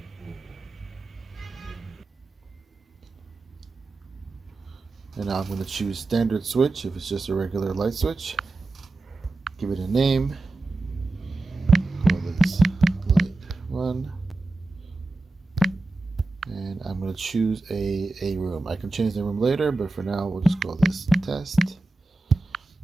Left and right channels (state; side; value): quieter; left; 3.1 dB